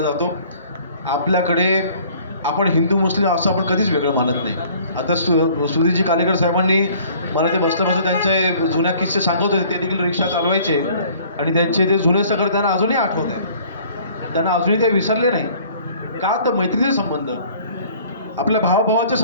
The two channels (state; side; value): inverted; both; correlation -0.54